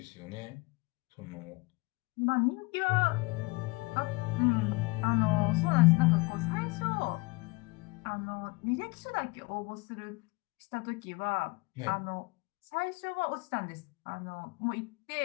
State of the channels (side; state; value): right; quieter; 25.1 dB